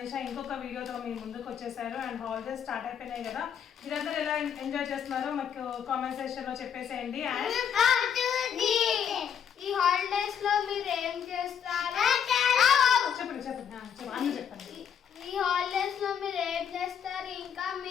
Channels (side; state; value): right; quieter; 8.2 dB